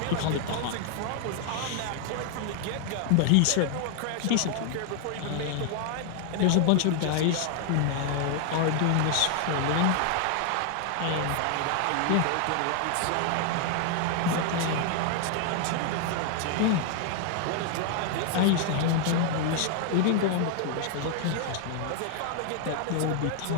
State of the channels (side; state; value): both; different; correlation 0.00